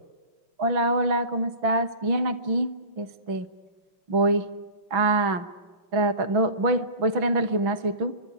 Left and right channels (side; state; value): left; late; 6.1 ms